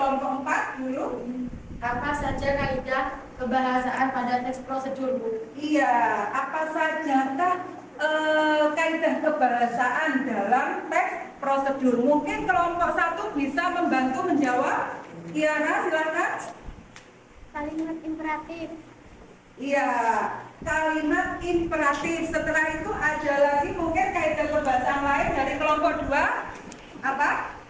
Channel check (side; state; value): both; identical; correlation 1.00